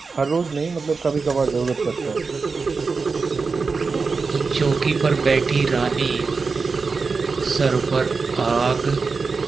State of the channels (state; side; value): quieter; left; 4.6 dB